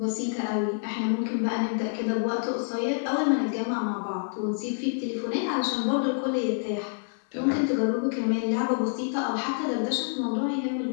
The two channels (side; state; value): right; silent; 60 dB below the other